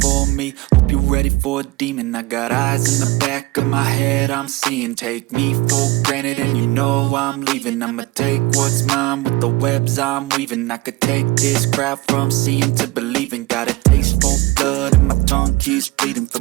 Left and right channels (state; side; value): quieter; left; 20.0 dB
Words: me, hope you're ready for a demon. I got eyes in the back of my head, I'm seeing. Take me for granted and you know I'm leaving. I'ma take what's mine with the webs I'm weaving. I could take this crowd from seeing to believing. Got a taste for blood and my tongue keeps bleeding